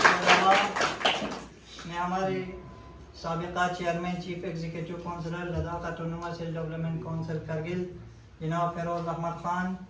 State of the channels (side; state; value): both; identical; correlation 1.00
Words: अलावा मैं हमारे साबिका chairman chief executive councillor Ladakh autonomous hill development council Kargil जनाब फिरोज़ अहमद ख़ान,